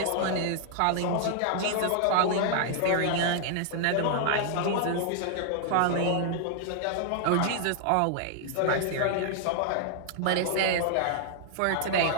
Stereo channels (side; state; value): both; different; correlation 0.00